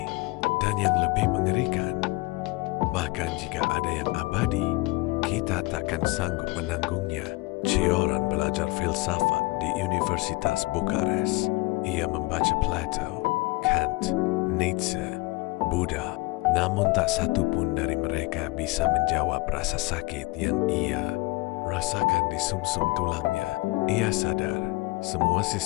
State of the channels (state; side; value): quieter; right; 23.3 dB